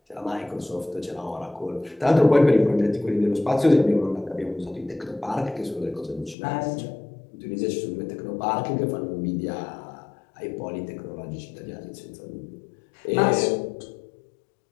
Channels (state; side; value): drops out; right; at 6.4 s